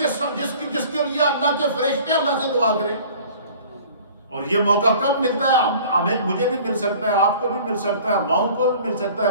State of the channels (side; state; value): both; inverted; correlation -0.47